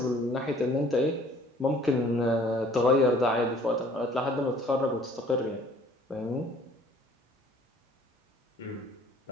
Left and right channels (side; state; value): both; normal; correlation 0.55